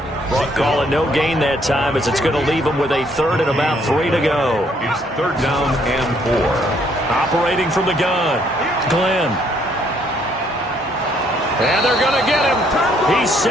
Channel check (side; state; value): both; normal; correlation 0.67